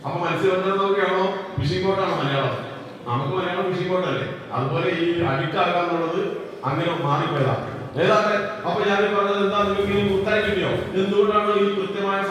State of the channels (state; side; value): identical; both; correlation 1.00